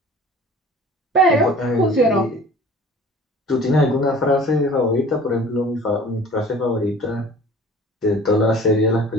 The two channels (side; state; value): both; normal; correlation 0.45